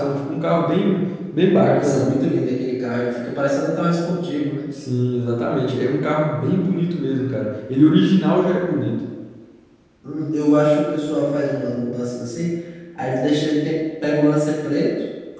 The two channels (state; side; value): identical; both; correlation 1.00